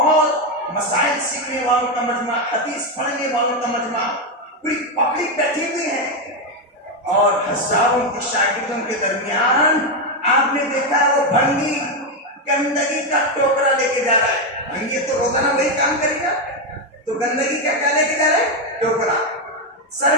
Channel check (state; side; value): normal; both; correlation 0.06